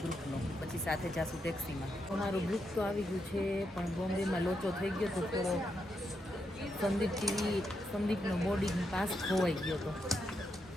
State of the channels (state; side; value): normal; both; correlation 0.82